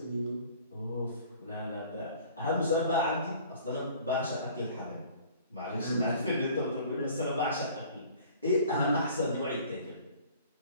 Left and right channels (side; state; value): both; inverted; correlation -0.50